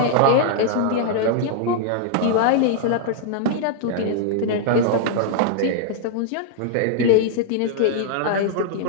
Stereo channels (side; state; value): both; different; correlation -0.01